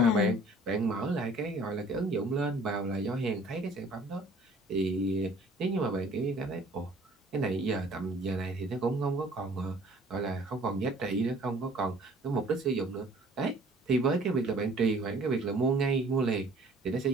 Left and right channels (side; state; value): both; normal; correlation 0.53